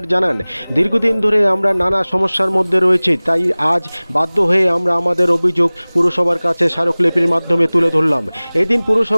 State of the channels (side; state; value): both; inverted; correlation -1.00